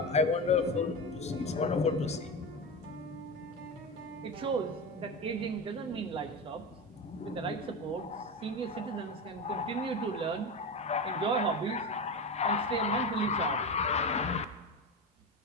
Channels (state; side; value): normal; both; correlation 0.21